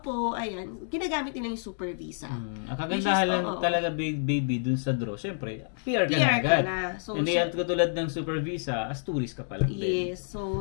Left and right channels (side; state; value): right; silent; digital silence